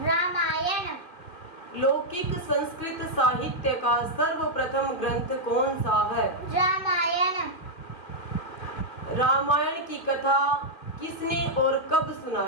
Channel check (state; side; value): late; right; 2.0 ms